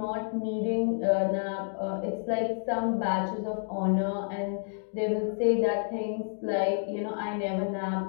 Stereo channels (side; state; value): right; silent; digital silence